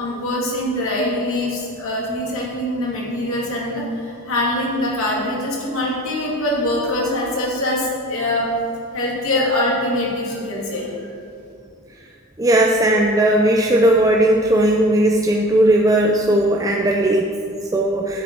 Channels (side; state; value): both; normal; correlation 0.42